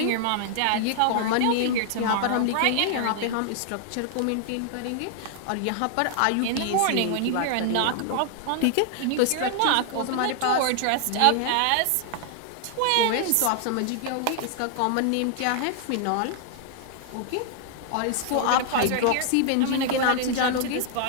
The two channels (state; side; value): different; both; correlation 0.00